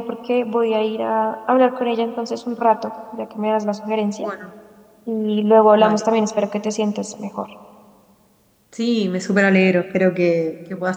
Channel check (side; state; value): both; identical; correlation 1.00